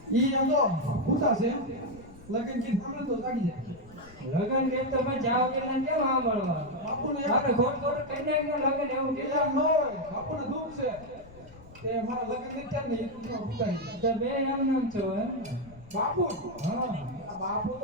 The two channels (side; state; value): left; noise; rumble, 21 dB below the sound